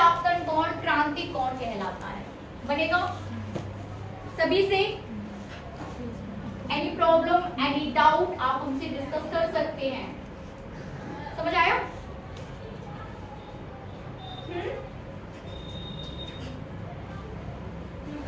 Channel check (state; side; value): identical; both; correlation 1.00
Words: आपतन कोण क्रांतिक कोण कहलाता है। बनेगा सभी से? एनी प्रॉब्लम, एनी डाउट आप उनसे डिस्कस कर सकते हैं। समझ आया?